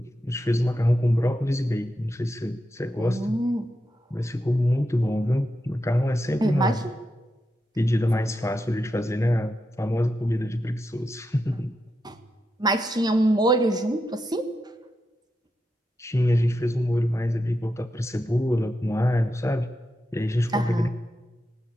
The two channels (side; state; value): both; normal; correlation 0.87